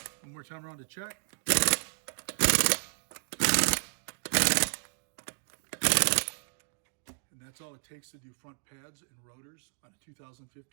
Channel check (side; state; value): left; silent; digital silence